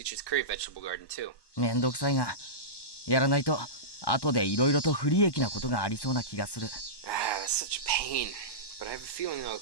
curry vegetable garden too. めんどくさいが、やらないと後で色々と不利益なことがありそうな気がする。Ah, that's such a pain. But I have a feeling it'll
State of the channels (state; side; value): late; right; 1.1 ms